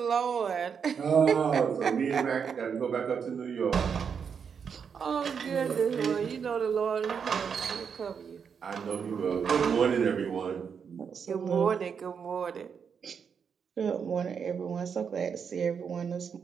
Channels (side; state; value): left; quieter; 6.7 dB